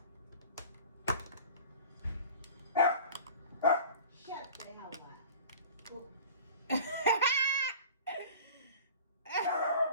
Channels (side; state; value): both; inverted; correlation -0.41